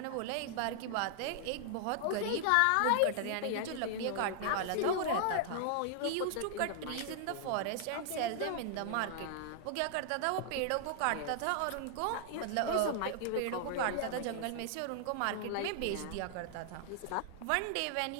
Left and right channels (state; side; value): different; both; correlation -0.01